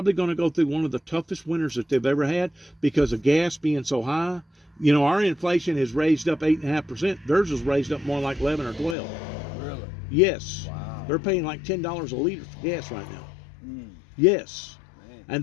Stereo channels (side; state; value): right; drops out; at 9.0 s